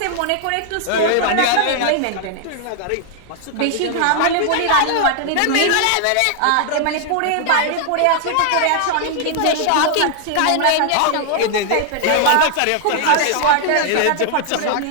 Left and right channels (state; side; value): different; both; correlation 0.00